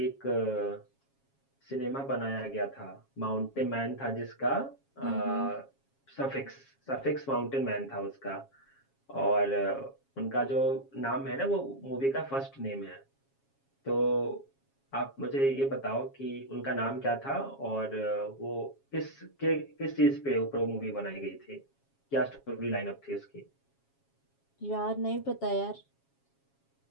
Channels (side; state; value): right; late; 7.3 ms